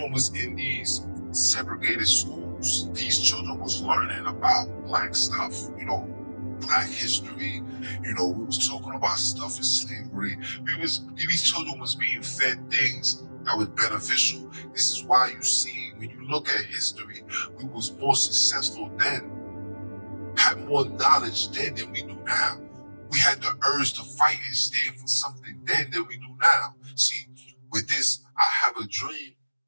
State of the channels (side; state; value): both; inverted; correlation -1.00